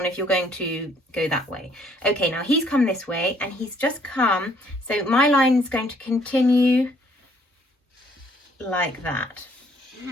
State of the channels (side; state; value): both; normal; correlation 0.64